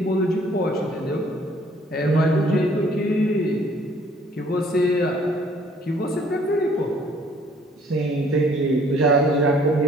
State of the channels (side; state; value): both; normal; correlation 0.59